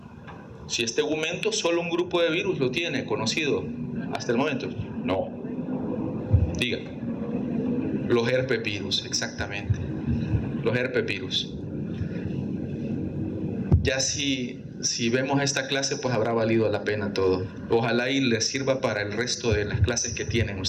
Si es tegumento, solo un grupo de virus lo tiene conocido hasta el momento. No. Diga. Los herpesvirus, exactamente. Los herpesvirus. Ya si vemos esta clase, pues habrá valido la pena todo. Ojalá y les sirva para el resto de las clases que tienen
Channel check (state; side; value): identical; both; correlation 1.00